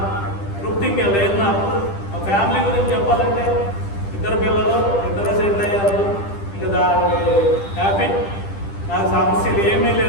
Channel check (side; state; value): right; late; 10 ms